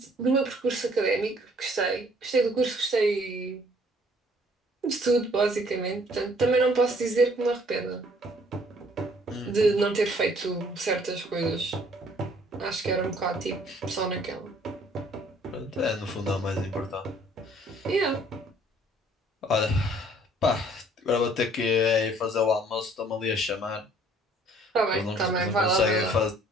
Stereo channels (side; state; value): both; normal; correlation 0.59